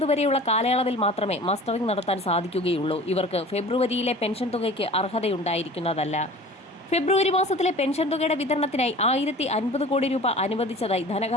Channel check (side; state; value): both; normal; correlation 0.42